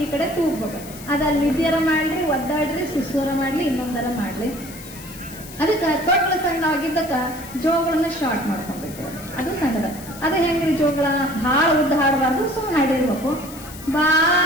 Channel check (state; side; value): noise; left; hiss, 16 dB below the sound